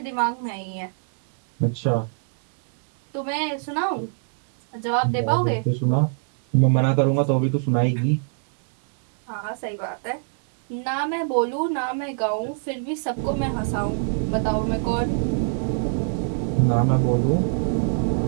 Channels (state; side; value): silent; left; 62 dB below the other